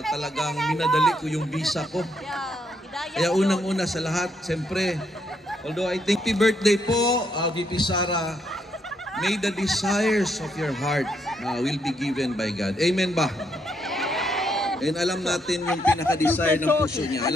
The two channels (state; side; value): normal; both; correlation 0.75